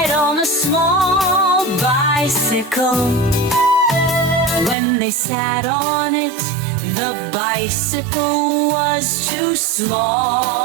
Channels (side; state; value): left; drops out; at 4.8 s